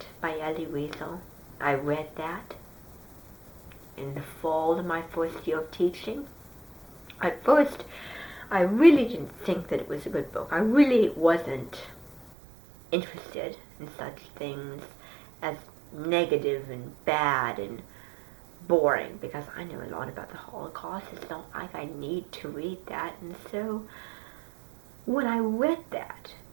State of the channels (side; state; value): left; drops out; at 12.3 s